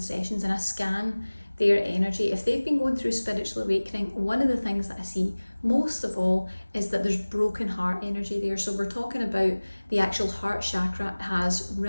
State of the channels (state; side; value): inverted; both; correlation -1.00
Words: and I scan their energy, if they've been going through spiritual awakening, one of the things that I see most of all is that there's broken heart energy there. So we're talking about the actual heart chakra has